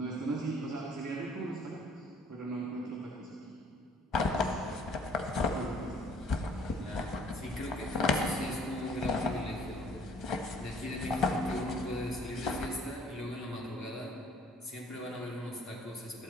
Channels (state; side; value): normal; both; correlation 0.58